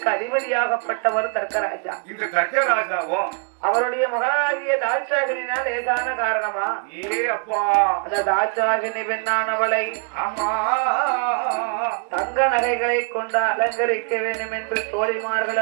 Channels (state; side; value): quieter; left; 39.6 dB